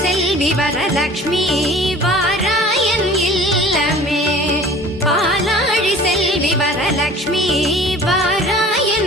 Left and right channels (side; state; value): both; normal; correlation 0.46